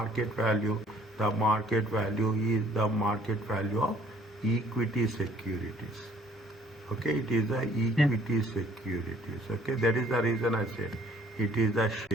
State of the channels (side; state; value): both; normal; correlation 0.60